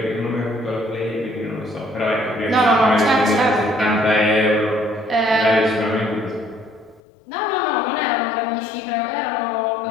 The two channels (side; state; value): right; drops out; at 7.0 s